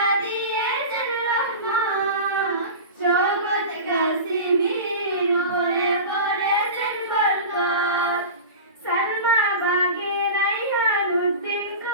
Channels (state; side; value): inverted; both; correlation -0.31